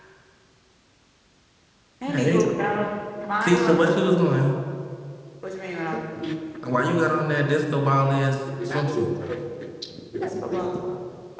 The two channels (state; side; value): identical; both; correlation 1.00